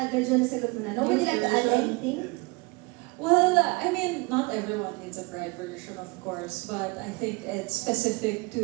medyo nasagot mo na. Nobody like to add anything? Well, not everyone needs a Pride version, of course, but I think it's specific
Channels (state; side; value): quieter; left; 26.7 dB